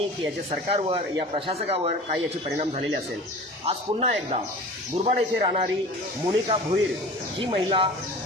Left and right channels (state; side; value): normal; both; correlation 0.39